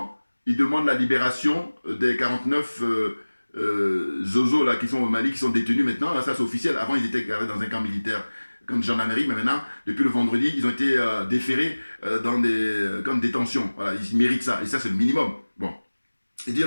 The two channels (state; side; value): inverted; both; correlation -1.00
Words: ils demandent la libération des 49 zozos là, qui sont au Mali, qui sont détenus maintenant. Là, ça, c'est officiel. Avant, ils étaient gardés dans un camp militaire, camp de gendarmerie, mais maintenant, depuis le vendredi, ils ont été déférés dans des camps de détention. Voilà, ils méritent ça. Et ça, c'est le minimum. Bon. Et